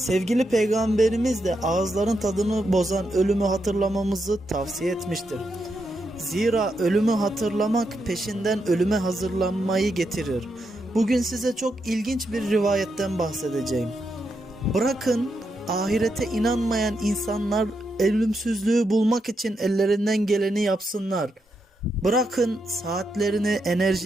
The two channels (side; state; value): both; normal; correlation 0.83